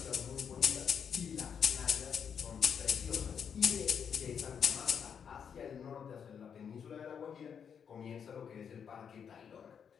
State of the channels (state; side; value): quieter; right; 7.4 dB